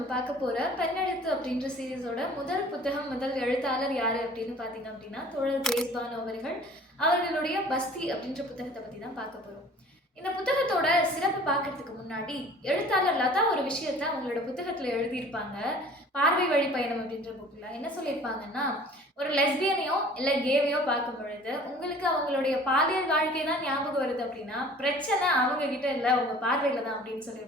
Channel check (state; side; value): normal; both; correlation 0.48